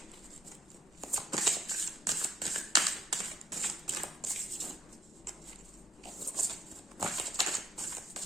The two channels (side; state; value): both; normal; correlation 0.72